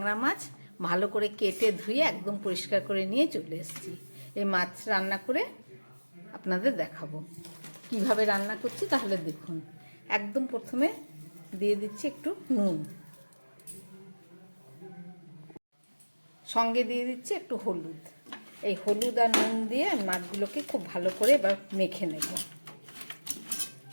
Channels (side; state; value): both; inverted; correlation -1.00